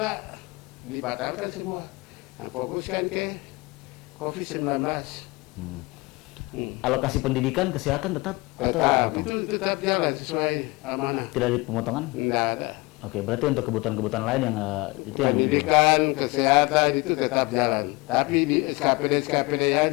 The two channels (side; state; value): right; quieter; 24.2 dB